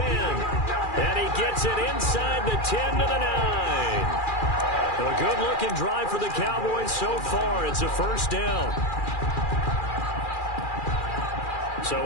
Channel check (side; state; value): right; late; 2.4 ms